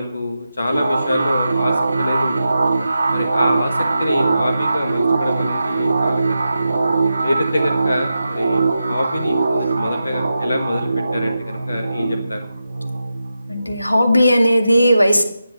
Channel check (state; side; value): inverted; both; correlation -0.90